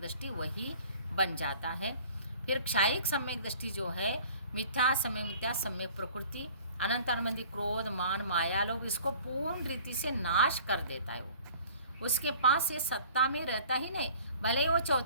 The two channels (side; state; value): both; inverted; correlation -0.49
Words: वही बन जाता है। फिर क्षायिक सम्यक दृष्टि जो है मिथ्या, समय मिथ्या, सम्यक प्रकृति, अनंत अनुबंधी, क्रोध, मान, माया, लोभ, इसको पूर्ण रीति से नाश कर देता है। वो उसके पास ये सत्ता में रहता ही नहीं, भले ही वो